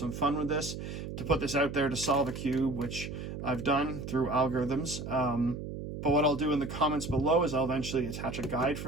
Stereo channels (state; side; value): noise; right; hum, 7 dB below the sound